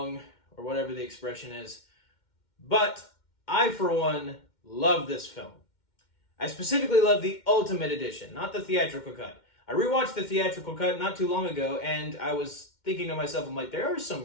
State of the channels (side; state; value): right; late; 2.1 ms